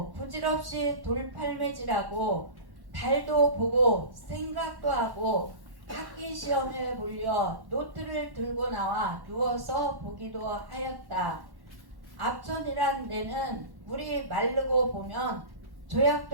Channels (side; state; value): left; late; 1.1 ms